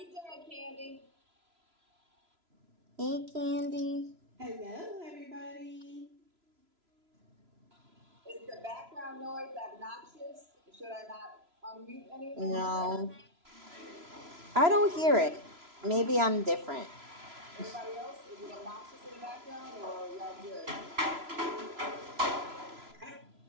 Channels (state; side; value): late; left; 3.0 ms